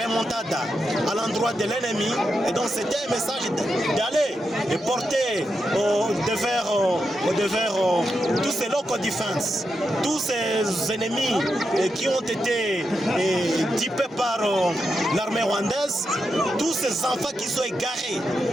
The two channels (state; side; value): normal; both; correlation 0.86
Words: à l'endroit de l'ennemi, et donc c'était un message d'aller et porter devers tous ces local defense, tous ces ennemis qui ont été typés par l'armée rwandaise, tous ces enfants qui sont égarés